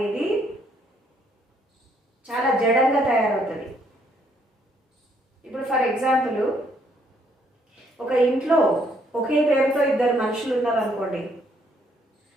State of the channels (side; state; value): both; normal; correlation 0.68